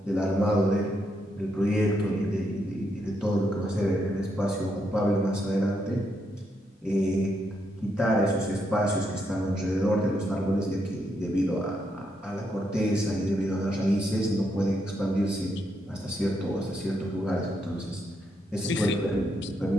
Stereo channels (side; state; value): both; normal; correlation 0.79